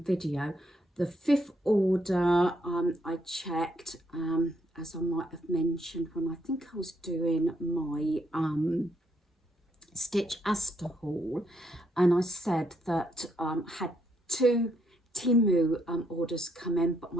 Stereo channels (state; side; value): normal; both; correlation 0.74